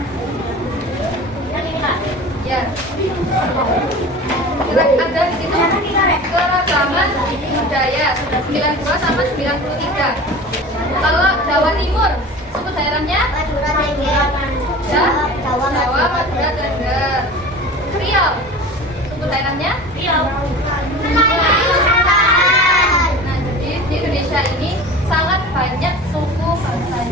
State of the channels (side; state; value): both; normal; correlation 0.37